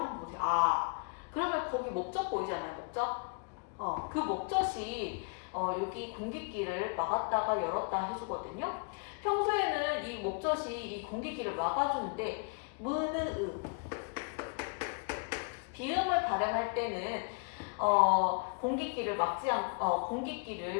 보세요. 아 그러면 거기 목젖 보이잖아요. 목젖. 그 목젖이 여기 공기길을 막았다가 열었다 해주거든요. 평소에는 이 목젖이 이 공기길을 막아주는데 무느음 비음을 발음할 때는 공기길을 막지 않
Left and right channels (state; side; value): quieter; right; 36.0 dB